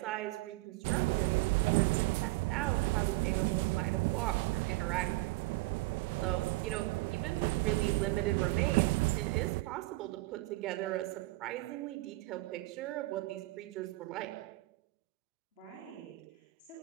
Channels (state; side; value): quieter; left; 21.4 dB